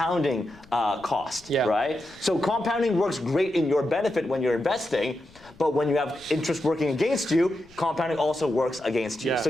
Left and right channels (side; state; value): left; noise; rumble, 26 dB below the sound